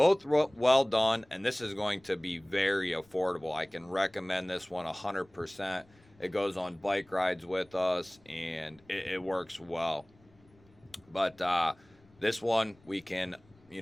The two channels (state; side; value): noise; left; rumble, 30 dB below the sound